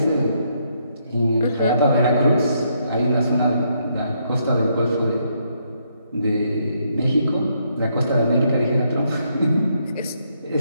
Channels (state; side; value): inverted; both; correlation -0.75